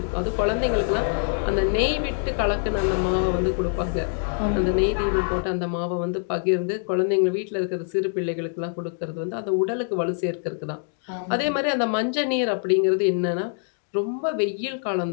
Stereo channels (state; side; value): silent; right; 61 dB below the other